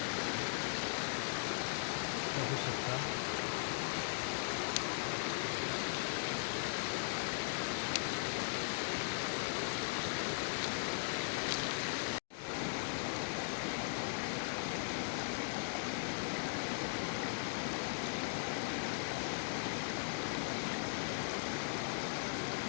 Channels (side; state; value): right; silent; digital silence